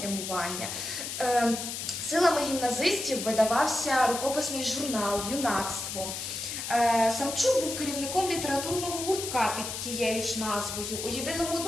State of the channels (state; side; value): noise; left; hiss, 5 dB below the sound